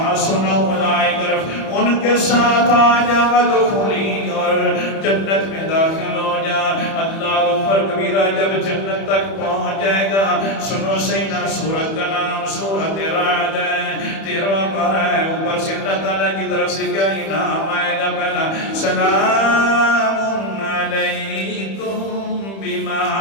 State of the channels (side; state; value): right; late; 31 ms